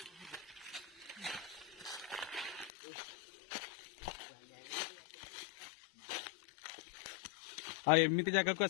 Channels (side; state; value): right; drops out; at 2.7 s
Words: एमती जगह को